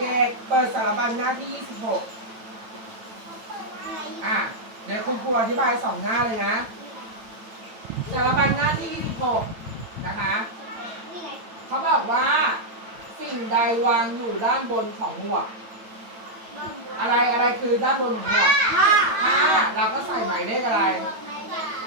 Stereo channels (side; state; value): left; late; 8.9 ms